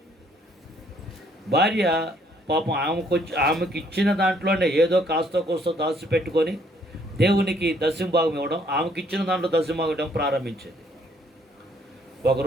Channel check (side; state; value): both; normal; correlation 0.65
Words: భార్య పాపం ఆమెకి ఇచ్చిన దాంట్లోనే ఏదో కాస్త కోస్తో దాచిపెట్టుకొని దేవునికి దశంభాగం ఇవ్వడం, ఆమెకి ఇచ్చిన దాంట్లో దశంభాగం ఇవ్వడం ప్రారంభించింది. ఒక